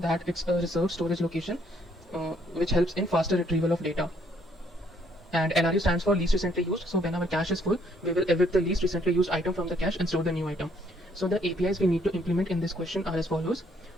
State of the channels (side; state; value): both; normal; correlation 0.67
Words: that it's a reserved storage location which helps in faster retrieval of data. And LRU stands for least recently used. So when our cache is full, we will evict the least recently used item from the cache and store the new item. So the APIs we need to implement in this question are as follows.